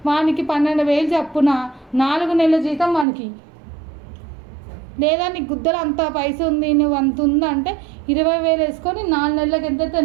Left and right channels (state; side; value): drops out; left; at 3.1 s